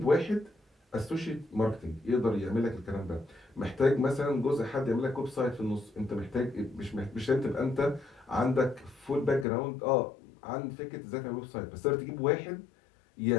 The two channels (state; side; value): drops out; right; at 9.5 s